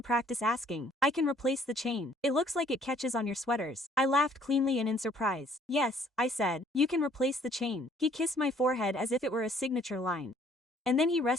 practice asking. I can replace the chain. It looks like it catches on your sweaters. I laughed cleanly and in surprise. Yes, I said. You can replace the chain. He kissed my forehead as if it were a signature line. And then he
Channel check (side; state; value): both; normal; correlation 0.61